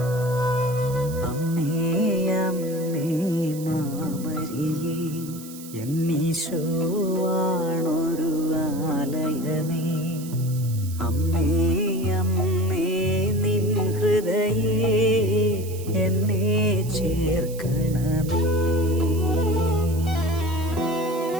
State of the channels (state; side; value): noise; right; hiss, 16 dB below the sound